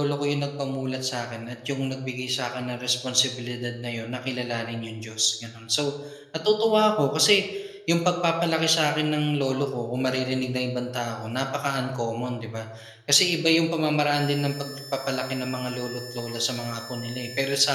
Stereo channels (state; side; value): identical; both; correlation 1.00